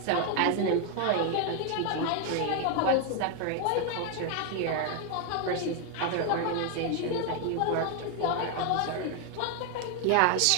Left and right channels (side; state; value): both; different; correlation 0.01